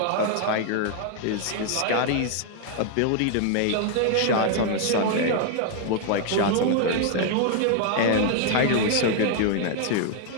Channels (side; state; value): both; different; correlation 0.00